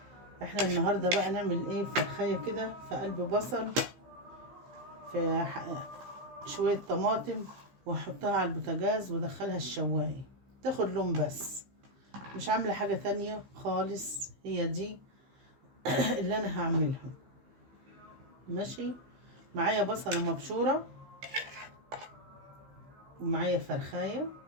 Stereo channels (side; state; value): left; late; 15 ms